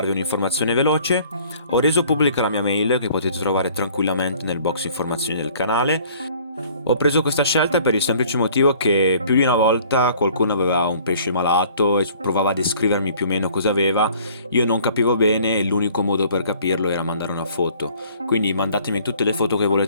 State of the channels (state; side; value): inverted; both; correlation -0.55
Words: un'informazione veloce. Ho reso pubblica la mia mail che potete trovare tranquillamente nel box informazioni del canale. Ho preso questa scelta per il semplice motivo che più di una volta qualcuno aveva un pesce malato e provava a descrivermi più o meno cosa aveva. Io non capivo bene e l'unico modo per capirlo era mandare una foto. Quindi mandatemi tutte le foto che